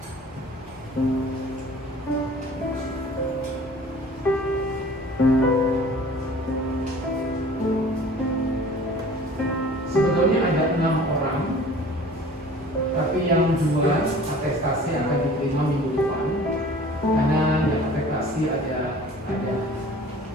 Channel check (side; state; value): both; normal; correlation 0.46